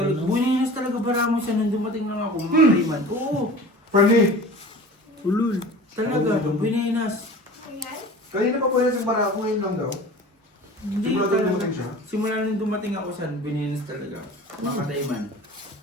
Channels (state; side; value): normal; both; correlation 0.40